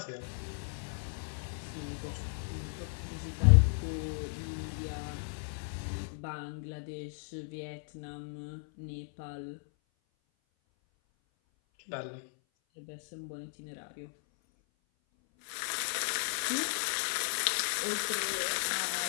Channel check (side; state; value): right; silent; 54 dB below the other